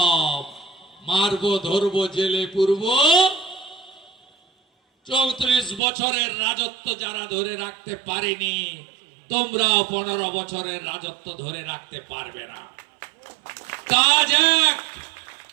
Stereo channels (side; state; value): left; drops out; at 5.8 s